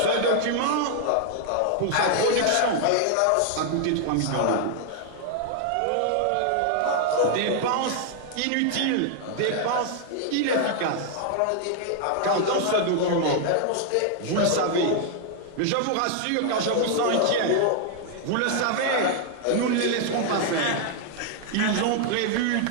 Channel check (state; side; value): different; both; correlation 0.00